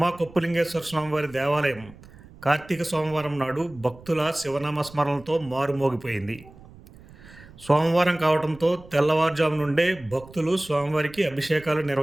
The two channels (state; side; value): noise; right; rumble, 21 dB below the sound